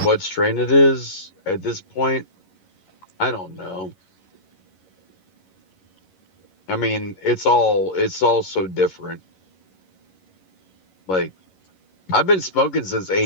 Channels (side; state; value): right; late; 11 ms